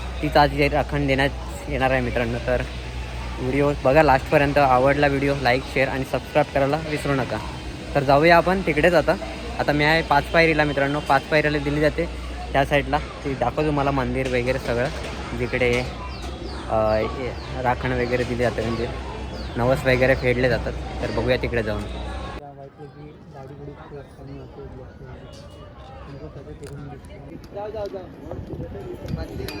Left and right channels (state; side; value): identical; both; correlation 1.00